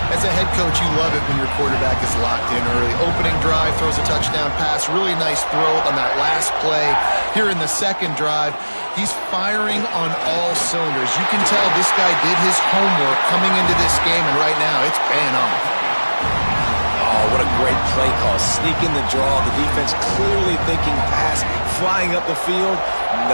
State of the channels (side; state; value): both; inverted; correlation -1.00